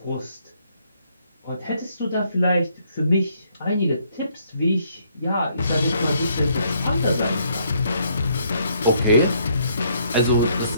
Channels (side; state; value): both; inverted; correlation -0.69